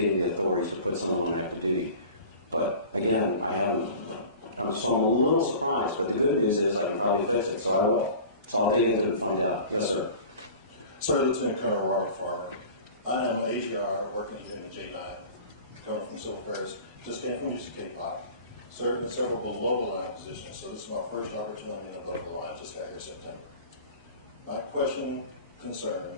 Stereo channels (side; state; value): both; inverted; correlation -0.40